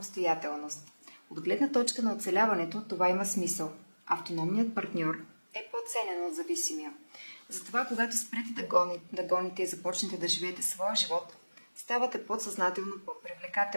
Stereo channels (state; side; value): inverted; both; correlation -1.00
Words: От гледна точка на оцеляването това има смисъл. Автономният партньор е по-ценен от зависимия. Затова, когато спрете да гоните и започнете да живеете своя живот, ставате подсъзнателно